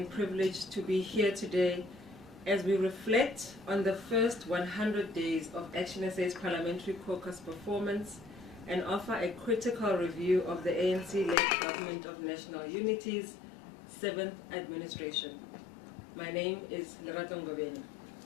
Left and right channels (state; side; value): drops out; right; at 11.4 s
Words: privilege to be here today as we reflect on the first 100 days of ActionSA's Parliamentary Caucus performance and offer a critical review of the ANC-led Government of National Unity's 7th administration. My name is Lerato Ngobeni.